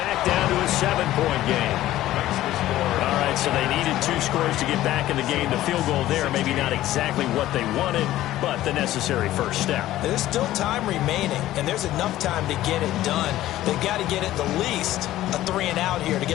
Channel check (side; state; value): right; quieter; 14.6 dB